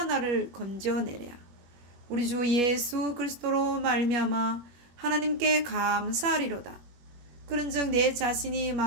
나를 건져내랴. 우리 주 예수 그리스도로 말미암아 하나님께 감사하리로다. 그런즉 내 자신이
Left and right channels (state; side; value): late; left; 21 ms